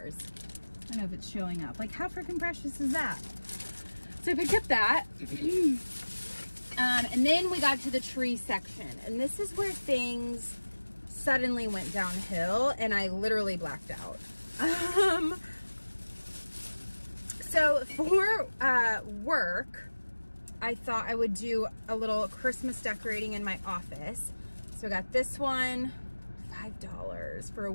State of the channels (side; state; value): both; inverted; correlation -1.00